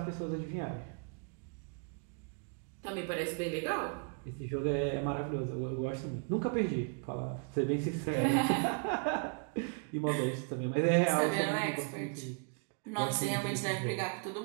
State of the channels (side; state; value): left; quieter; 39.4 dB